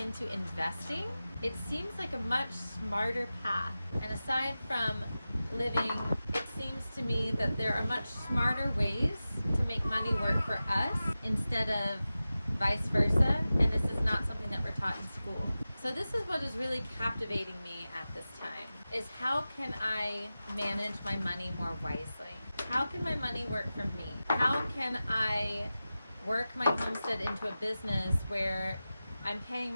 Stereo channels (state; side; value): inverted; both; correlation -0.95